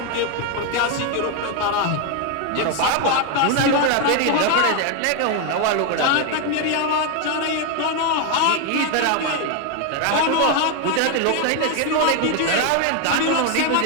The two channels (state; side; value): different; both; correlation 0.01